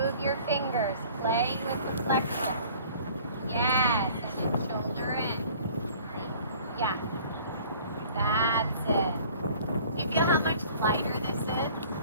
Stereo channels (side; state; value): both; inverted; correlation -0.50